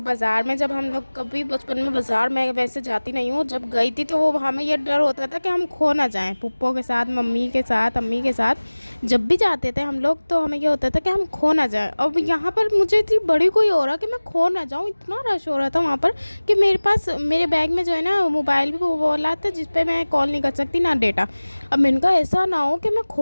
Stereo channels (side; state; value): both; inverted; correlation -1.00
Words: میں، جب ہم لوگ کبھی بچپن میں بازار میں ویسے جاتی نہیں ہوں، جب گئی تھی تو وہ ہمیں یہ ڈر ہوتا تھا کہ ہم کھو نہ جائیں. پھپھو کے ساتھ، ممی کے ساتھ، امی کے ساتھ جب بھی جاتے تھے ہم لوگ تو ہمیں یہ ہوتا تھا کہ ہم کھو نہ جائیں. اب یہاں پر مجھے اتنی بڑی کوئی ہو رہا کہ میں کھو نہ جاؤں، اتنا رش ہو رہا تھا وہاں پر کہ میرے بیگ میں جو ہے نا موبائل بھی وہ والا تھا جس پہ میں کال نہیں کر سکتی نہ ڈیٹا. اب ان کا ایسا نہ ہو کہ میں